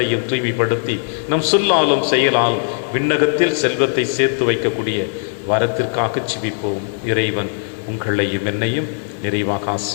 தூய்மைப்படுத்தி நம் சொல்லாலும் செயலாலும் விண்ணகத்தில் செல்வத்தை சேர்த்து வைக்கக்கூடிய வரத்திற்காக ஜெபிப்போம். இறைவன் உங்களையும் என்னையும் நிறைவாக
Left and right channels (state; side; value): silent; right; digital silence